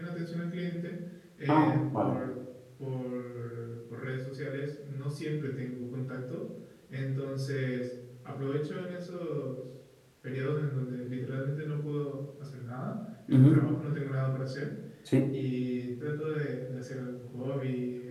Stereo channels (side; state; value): both; identical; correlation 1.00